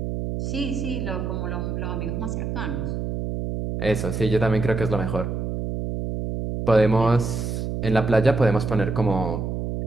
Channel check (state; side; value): noise; right; hum, 3 dB below the sound